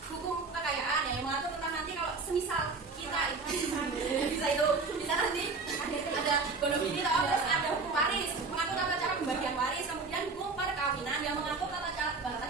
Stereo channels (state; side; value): quieter; left; 4.2 dB